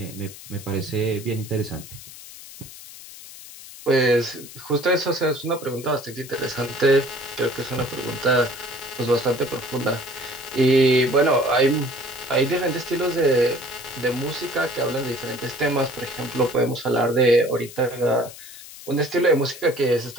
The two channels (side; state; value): left; noise; hiss, 16 dB below the sound